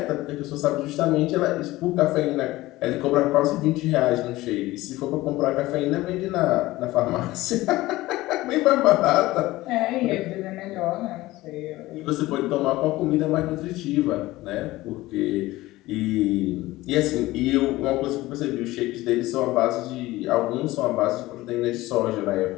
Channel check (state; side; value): quieter; right; 18.1 dB